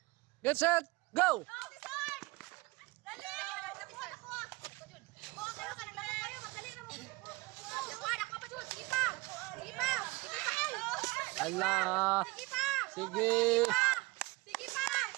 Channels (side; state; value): left; quieter; 23.1 dB